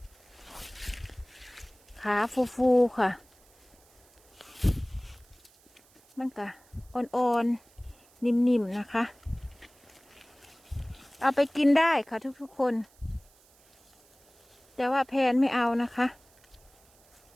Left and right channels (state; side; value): noise; right; hiss, 30 dB below the sound